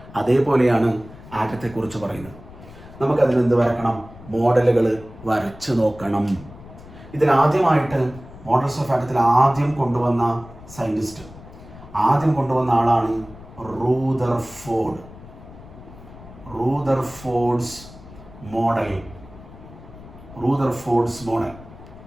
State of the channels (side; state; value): left; noise; rumble, 18 dB below the sound